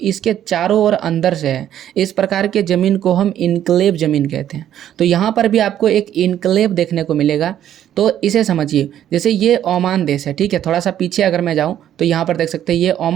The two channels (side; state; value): left; quieter; 10.9 dB